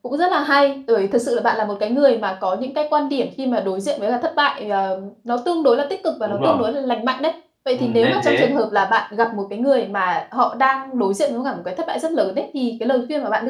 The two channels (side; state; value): both; identical; correlation 1.00